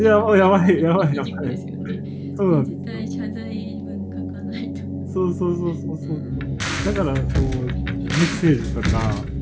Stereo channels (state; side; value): identical; both; correlation 1.00